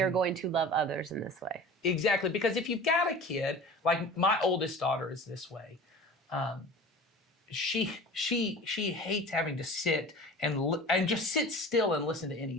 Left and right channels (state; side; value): normal; both; correlation 0.38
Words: are going to love others in this way. Exactly, because if you've got a kid, like my oldest daughter is this way, she hates having to sit and just sit still and listen to